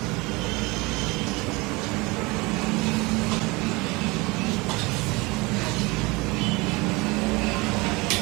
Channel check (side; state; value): left; quieter; 24.5 dB